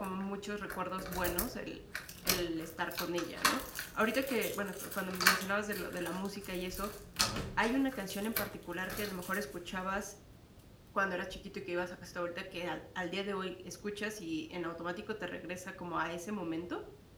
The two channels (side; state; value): both; identical; correlation 1.00